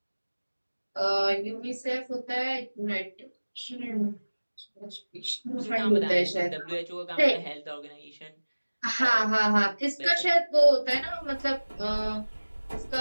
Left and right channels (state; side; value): inverted; both; correlation -1.00